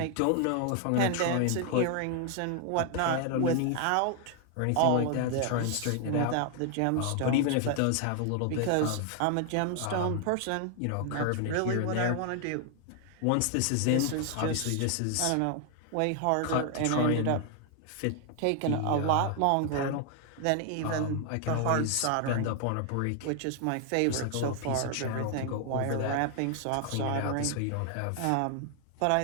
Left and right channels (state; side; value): different; both; correlation 0.00